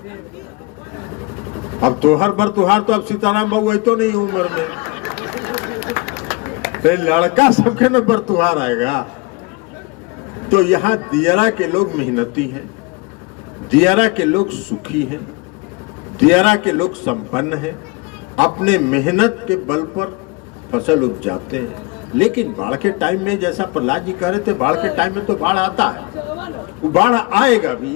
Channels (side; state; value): right; quieter; 26.7 dB